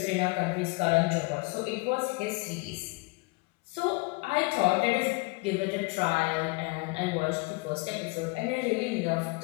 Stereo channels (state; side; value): quieter; right; 26.5 dB